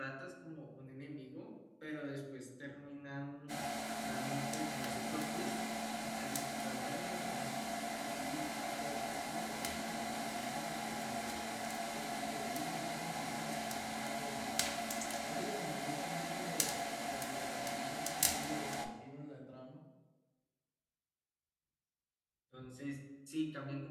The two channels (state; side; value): identical; both; correlation 1.00